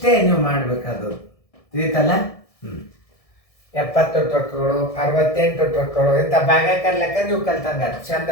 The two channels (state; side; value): late; right; 1.6 ms